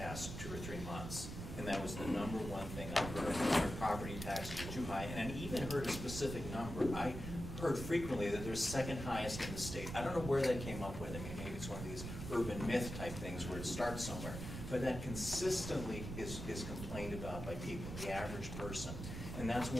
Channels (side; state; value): right; noise; rumble, 7 dB below the sound